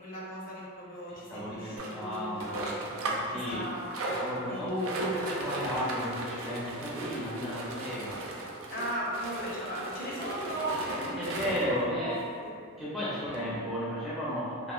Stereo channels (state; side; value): normal; both; correlation 0.19